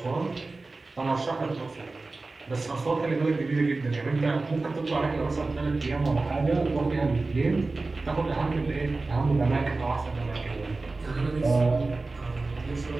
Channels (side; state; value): left; quieter; 3.5 dB